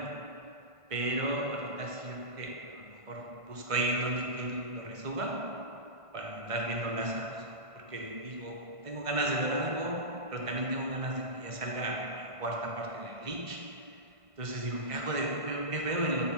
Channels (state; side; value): late; left; 1.5 ms